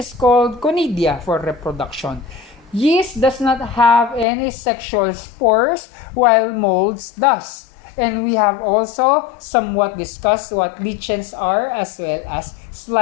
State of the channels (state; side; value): drops out; right; at 4.2 s